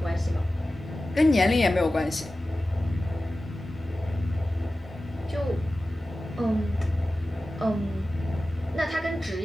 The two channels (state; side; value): normal; both; correlation 0.95